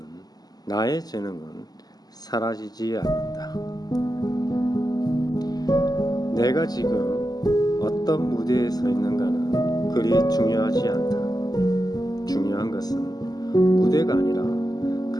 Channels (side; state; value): right; late; 0.19 ms